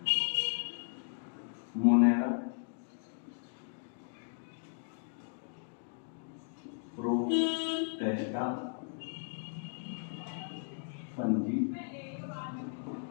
Monera, Protista, fungi,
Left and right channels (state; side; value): silent; right; 54 dB below the other